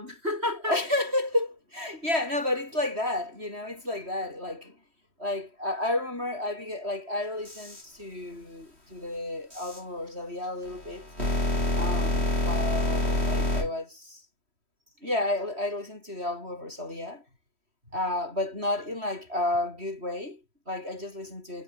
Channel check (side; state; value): left; late; 3.1 ms